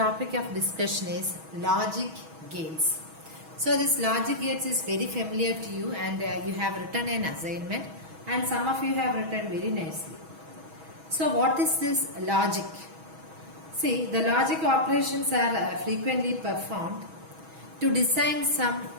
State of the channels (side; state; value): left; late; 6.2 ms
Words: of discussion is logic gates. So this logic gates is very familiar to you, and you have written an assignment, and some of you have written very nicely. So what is this logic? See, the logic operations are frequently performed to design some